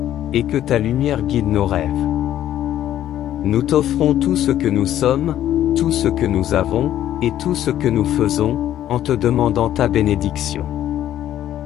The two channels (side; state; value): right; quieter; 11.9 dB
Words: et que ta lumière guide nos rêves. Nous t'offrons tout ce que nous sommes, tout ce que nous avons, et tout ce que nous faisons, en te demandant ta bénédiction.